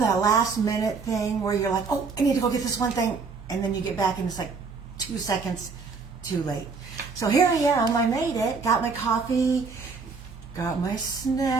last minute thing where you're like, oh, I need to go get this one thing, and then you get back and it's like 2 seconds too late. So here I am, I made it, got my coffee, got my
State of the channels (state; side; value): quieter; left; 4.7 dB